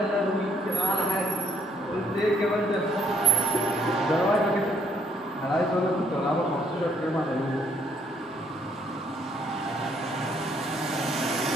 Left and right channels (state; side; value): normal; both; correlation 0.68